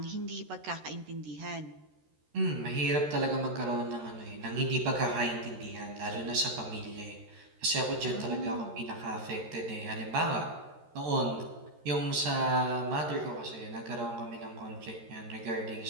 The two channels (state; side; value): late; left; 13 ms